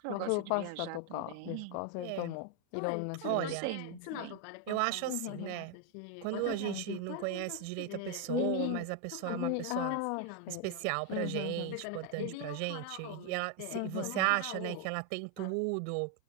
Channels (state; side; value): different; both; correlation 0.01